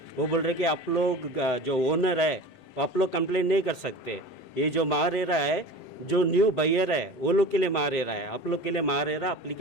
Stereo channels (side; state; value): right; late; 7.8 ms